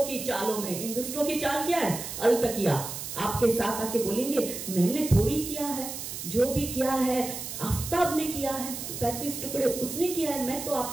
की चालों में। इन दुष्टों की चाल क्या है? अलतकिया आपके साथ आके बोलेंगे मैंने थोड़ी किया है, जो भी किया है आफ्ताब ने किया है, 35 टुकड़े उसने किया है, मैं तो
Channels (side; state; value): right; noise; hiss, 7 dB below the sound